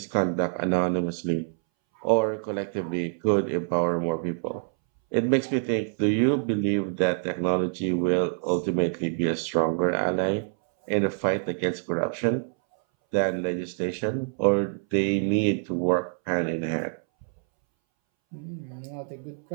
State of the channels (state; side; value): silent; left; 61 dB below the other